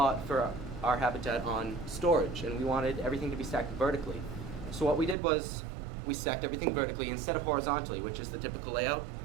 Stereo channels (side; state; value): left; drops out; at 5.2 s